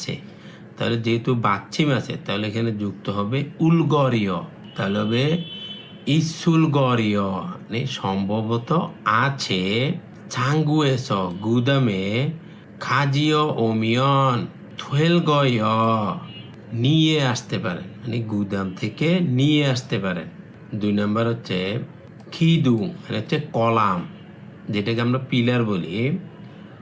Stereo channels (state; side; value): identical; both; correlation 1.00